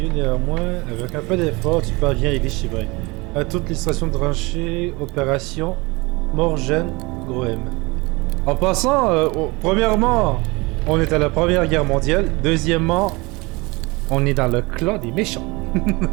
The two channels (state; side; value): quieter; left; 24.7 dB